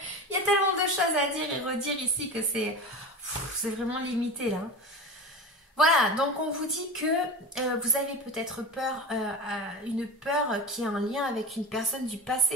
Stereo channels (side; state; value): both; normal; correlation 0.28